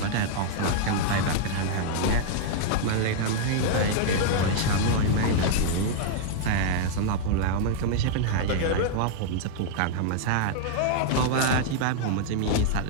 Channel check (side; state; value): both; different; correlation -0.01